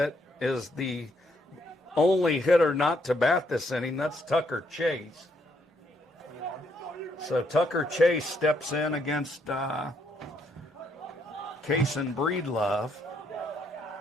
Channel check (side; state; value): both; normal; correlation 0.73